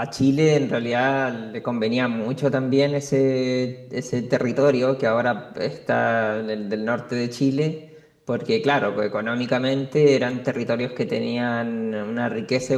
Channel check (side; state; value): both; identical; correlation 1.00